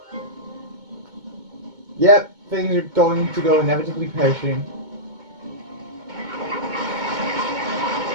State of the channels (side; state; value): left; late; 2.2 ms